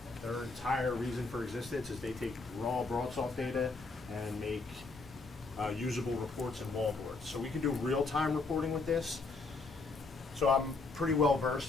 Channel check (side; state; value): right; quieter; 3.8 dB